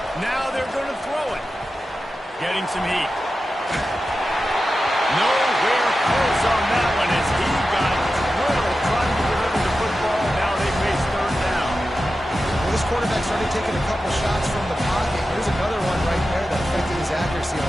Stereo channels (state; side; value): normal; both; correlation 0.92